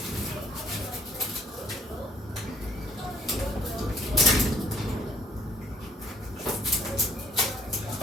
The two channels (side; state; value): both; normal; correlation 0.62